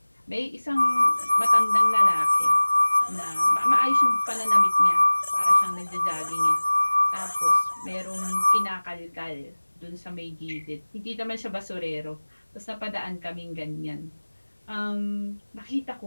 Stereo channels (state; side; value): inverted; both; correlation -1.00